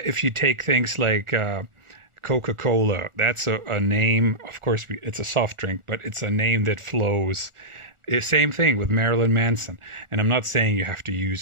take things like Coca-Cola, that's a name. Of course, it's a soft drink, but it's a name that flows. Same thing with Marilyn Manson. And I'm not saying you have to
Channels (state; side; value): late; left; 1.4 ms